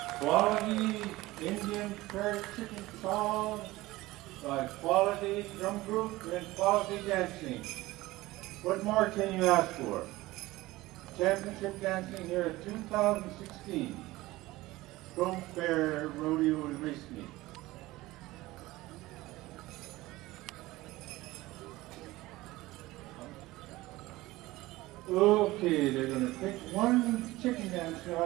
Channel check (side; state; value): left; quieter; 18.8 dB